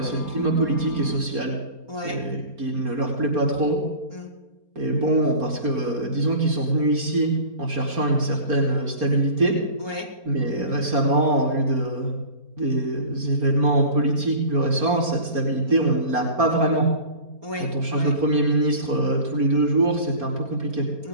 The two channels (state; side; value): late; left; 4.3 ms